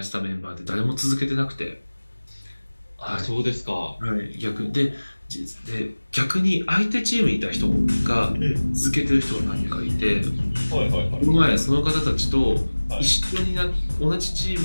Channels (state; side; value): inverted; both; correlation -1.00